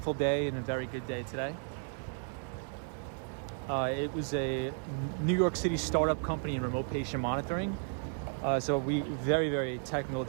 day and a very good day today. It was a New York City startup company in remote patient monitoring. So very, very technical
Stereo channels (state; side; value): silent; left; 55 dB below the other